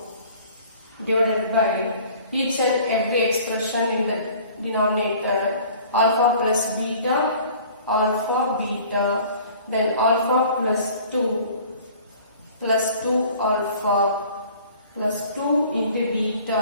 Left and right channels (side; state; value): both; inverted; correlation -0.50